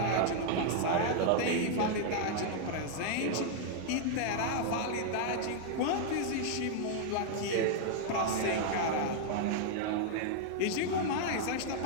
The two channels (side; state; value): both; different; correlation -0.01